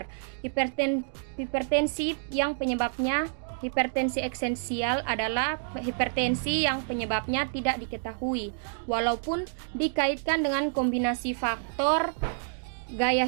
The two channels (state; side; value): silent; left; digital silence